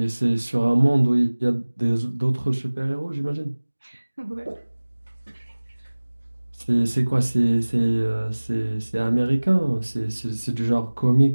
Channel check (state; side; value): inverted; both; correlation -1.00